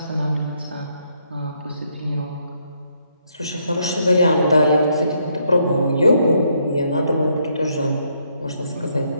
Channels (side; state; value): both; inverted; correlation -0.74